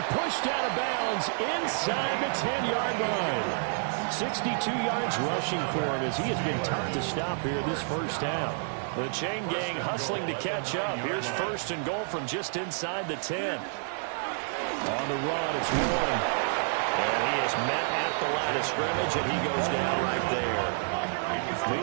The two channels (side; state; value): left; silent; 57 dB below the other